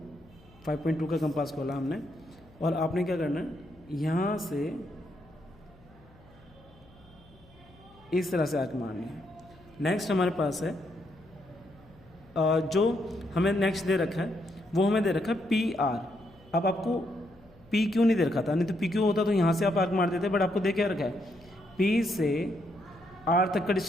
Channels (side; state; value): left; noise; hum, 27 dB below the sound